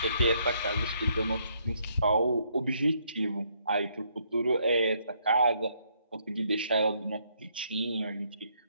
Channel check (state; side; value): inverted; both; correlation -0.71